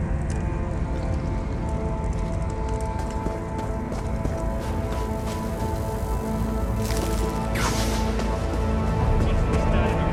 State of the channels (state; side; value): identical; both; correlation 1.00